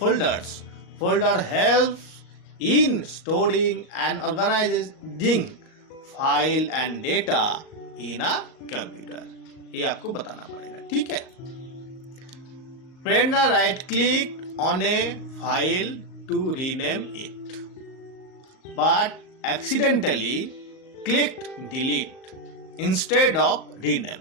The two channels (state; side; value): late; right; 38 ms